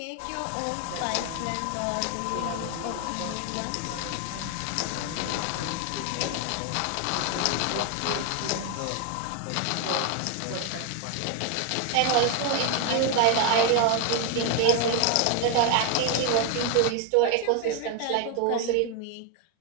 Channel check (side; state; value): both; different; correlation 0.01